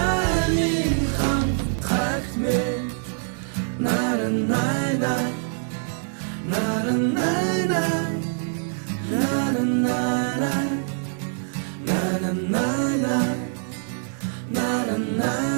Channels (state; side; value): silent; left; 62 dB below the other